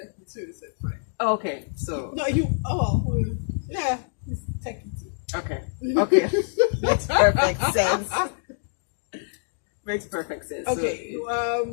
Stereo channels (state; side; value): silent; right; digital silence